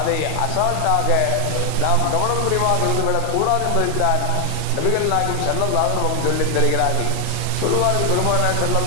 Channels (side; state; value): both; different; correlation 0.00